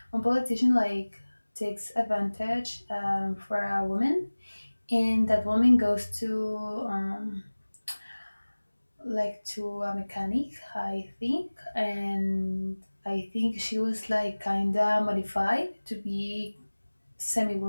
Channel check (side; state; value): both; inverted; correlation -1.00